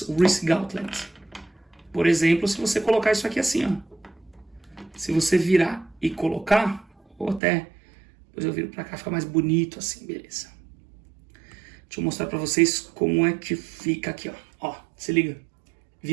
Wrist Gauntlets. Por exemplo, se você colocar isso aqui assim, ó. Se você virar e colocar, ou até, depois eu viro pra cá, fica mais bonito assim, beleza. Deixa eu mostrar pra vocês como é que fica aqui, ó. Ó, se liga.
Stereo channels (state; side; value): drops out; left; at 7.4 s